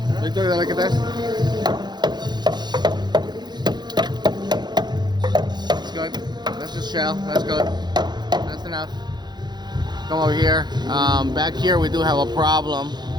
Victor, dale acá atrás. That's good. That's just shell. That's good. That's enough. Come over here. Back here we do have a problem.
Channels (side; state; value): left; late; 0.21 ms